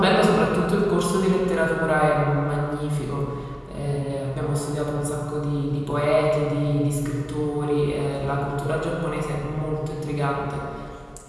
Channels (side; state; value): both; identical; correlation 1.00